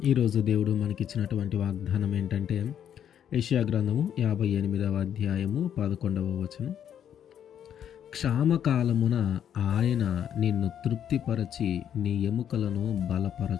ఈరోజు దేవుడు మనకిచ్చినటువంటి వాగ్దానం ఏంటంటే యెషయా గ్రంథము 58వ అధ్యాయము 11వ వచనం. క్షామకాలమున ఆయన నిన్ను తృప్తిపరచి నీ ఎముకలను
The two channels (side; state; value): right; quieter; 9.4 dB